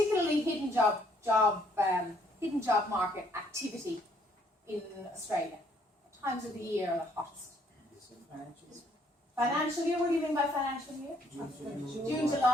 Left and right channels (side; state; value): both; normal; correlation 0.66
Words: hidden job market activity in Australia? What times of the year are the hottest? Financial year? What do you mean by financial year? June,